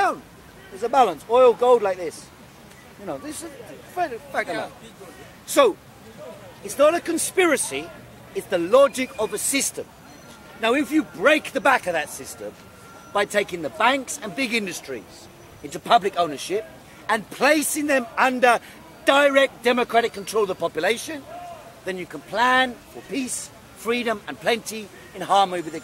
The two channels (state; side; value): identical; both; correlation 1.00